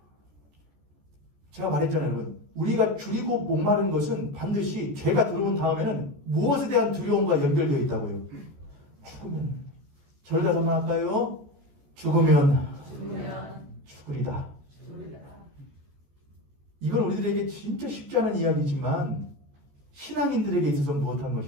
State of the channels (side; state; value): left; late; 14 ms